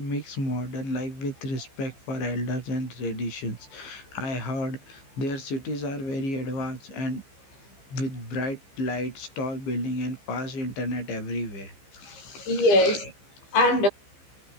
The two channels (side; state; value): right; late; 15 ms